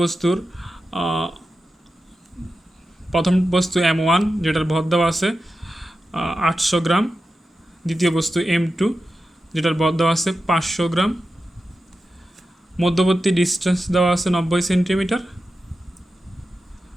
বস্তুর প্রথম বস্তু M1 যেটার ভর দেওয়া আছে 800 গ্রাম, দ্বিতীয় বস্তু M2 যেটার ভর দেওয়া আছে 500 গ্রাম, মধ্যবর্তী ডিস্টেন্স দেওয়া আছে 90 সেন্টিমিটার।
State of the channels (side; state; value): both; normal; correlation 0.92